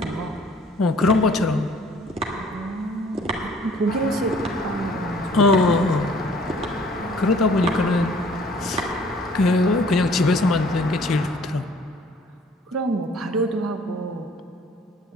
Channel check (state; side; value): normal; both; correlation 0.56